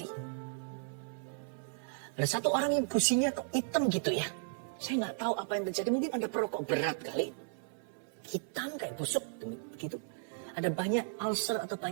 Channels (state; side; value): silent; left; 54 dB below the other